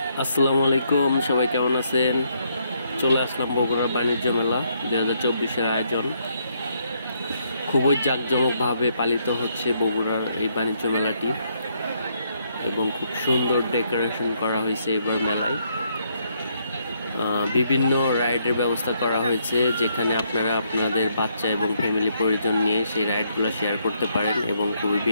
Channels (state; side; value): inverted; both; correlation -0.74